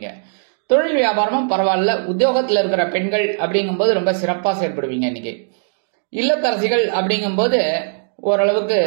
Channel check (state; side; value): silent; left; digital silence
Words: தொழில் வியாபாரமும் பரவாயில்ல. உத்தியோகத்துல இருக்கிற பெண்கள் அப்படிங்கும்போது ரொம்ப சிறப்பா செயல்படுவீங்க. இன்னைக்கு இல்லத்தரசிகள் அப்படிங்கும்போது ஓரளவுக்கு